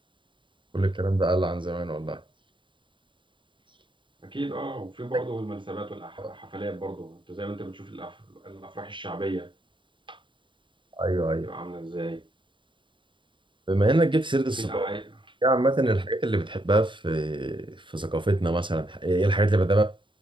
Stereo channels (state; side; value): late; left; 0.24 ms